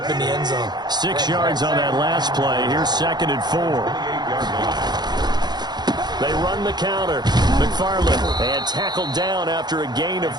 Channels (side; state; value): left; late; 0.20 ms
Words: in the end zone. 6 yards on that last play. Here's 2nd and 4. They run the counter. McFarland and tackled down after a gain of